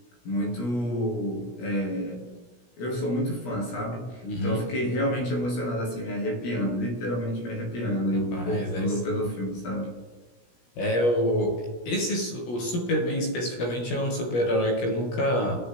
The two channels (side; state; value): right; late; 17 ms